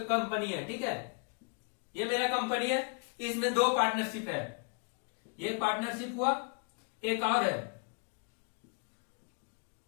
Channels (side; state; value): right; quieter; 38.4 dB